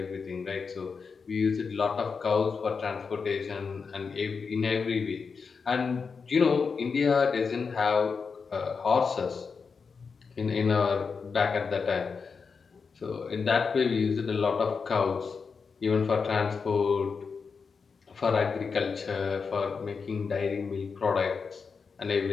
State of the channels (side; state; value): right; quieter; 5.3 dB